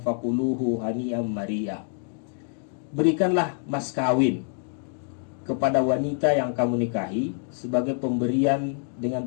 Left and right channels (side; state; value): right; silent; 57 dB below the other